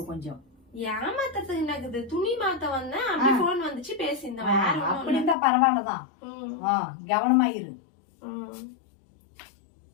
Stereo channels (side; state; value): right; drops out; at 5.4 s